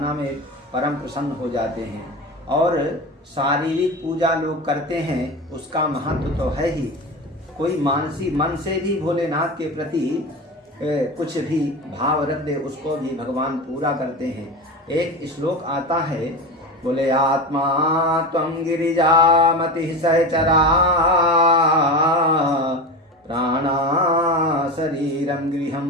में परम प्रसन्न हो जाते हैं और शारीरिक पूजा लोग करते हैं, उसका महत्व तो है ही। कोई मानसी मन से भी भोलेनाथ के प्रति कुछ भी भाव रख दे, उसको भी भगवान पूरा करते हैं। एक श्लोक आता है, बोले आत्मा त्वं गिरिजामति सहचरा प्राणा शरीरं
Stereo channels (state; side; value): normal; both; correlation 0.25